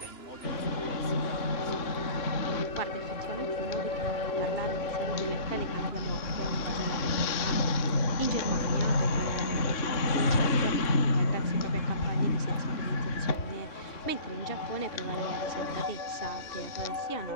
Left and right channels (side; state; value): right; late; 3.5 ms